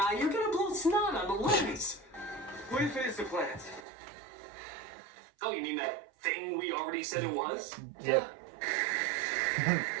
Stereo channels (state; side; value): drops out; left; at 3.9 s